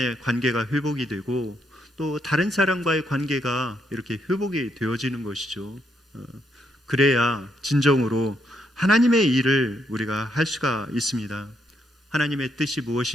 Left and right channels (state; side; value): normal; both; correlation 0.76